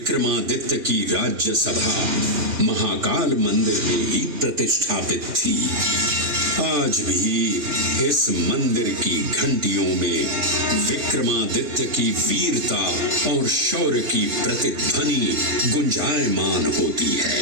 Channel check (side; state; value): left; late; 3.3 ms